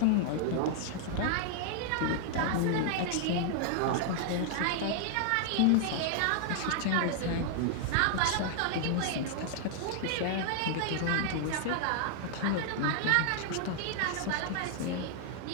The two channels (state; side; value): different; both; correlation -0.01